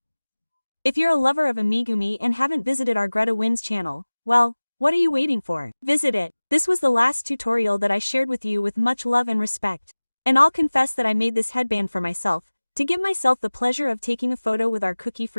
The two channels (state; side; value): inverted; both; correlation -1.00